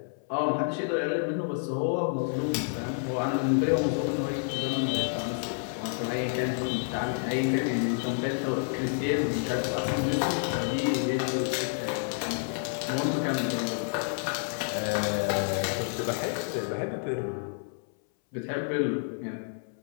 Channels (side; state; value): right; silent; 58 dB below the other